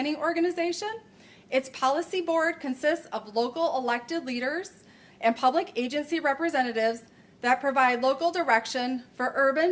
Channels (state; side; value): identical; both; correlation 1.00